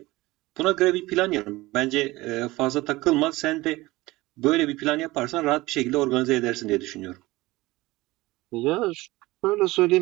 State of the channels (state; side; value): quieter; left; 19.9 dB